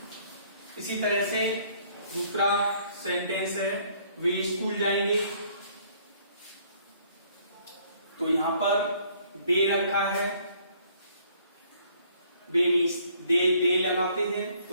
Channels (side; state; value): both; inverted; correlation -0.62